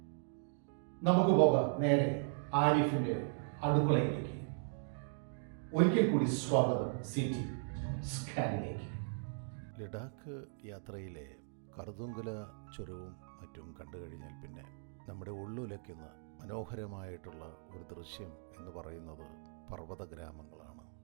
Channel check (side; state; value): left; silent; digital silence